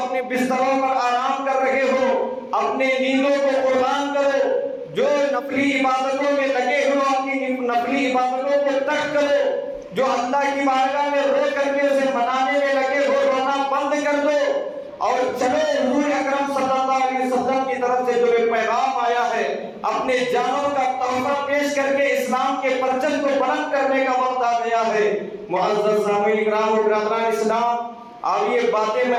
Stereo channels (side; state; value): both; identical; correlation 1.00